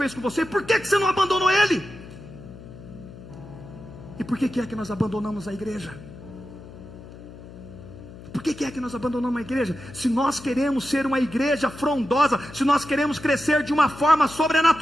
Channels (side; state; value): left; noise; hum, 16 dB below the sound